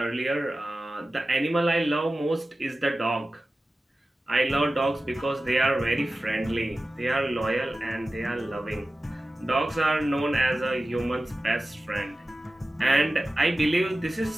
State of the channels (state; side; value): normal; both; correlation 0.95